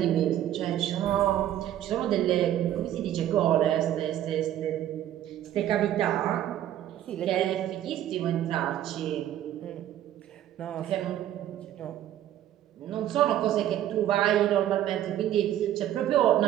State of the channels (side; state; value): left; quieter; 12.0 dB